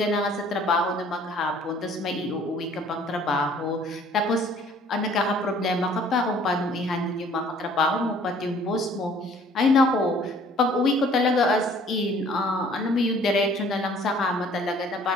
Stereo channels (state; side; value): normal; both; correlation 0.56